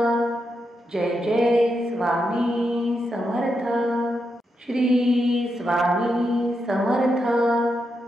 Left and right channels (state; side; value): normal; both; correlation 0.84